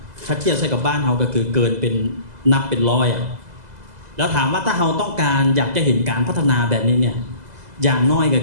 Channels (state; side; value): late; left; 2.0 ms